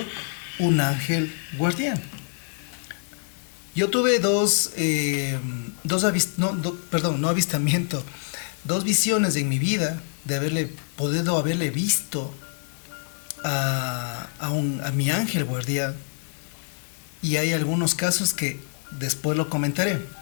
un ángel guardián. Yo tuve dos visiones en mi vida de haberle visto a mi ángel guardián, y hay algunos casos que después lo comentaré.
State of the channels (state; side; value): silent; right; 61 dB below the other